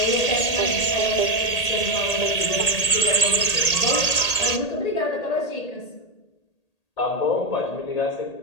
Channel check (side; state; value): right; late; 1.8 ms